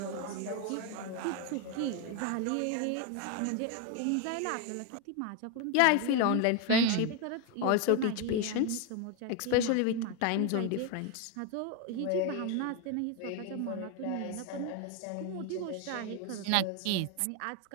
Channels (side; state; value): both; different; correlation 0.01